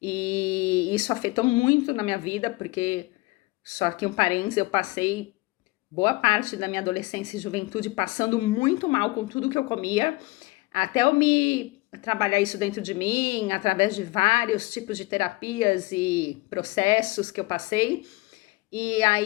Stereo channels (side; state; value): right; quieter; 22.5 dB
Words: E isso afetou muito na minha vida, porque, só que um parênteses, eu passei boa parte da minha adolescência e juventude passando muito mal com tudo que eu comia, até eu me trabalhar isso dentro de mim, através de vários tipos de terapias e processos que eu passei. E